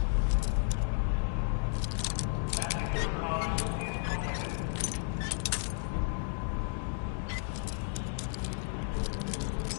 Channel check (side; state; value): right; silent; digital silence